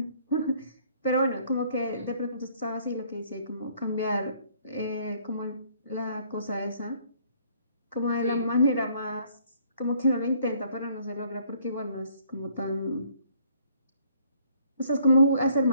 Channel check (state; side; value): inverted; both; correlation -0.63